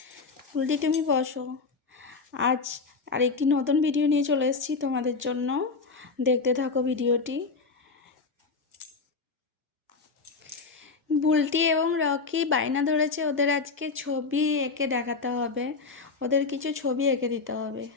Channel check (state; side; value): quieter; right; 4.5 dB